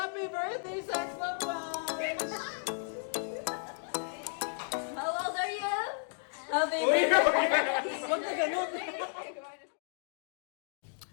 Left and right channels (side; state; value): right; silent; digital silence